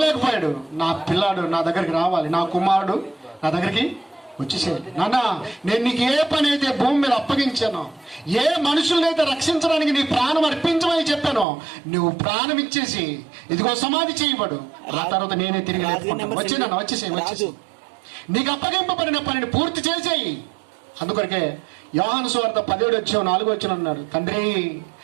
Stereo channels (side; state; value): left; drops out; at 11.5 s